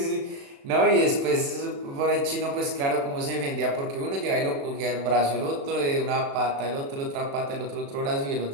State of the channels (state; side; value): late; left; 36 ms